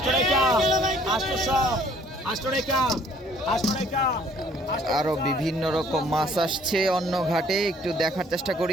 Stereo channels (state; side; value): normal; both; correlation 0.59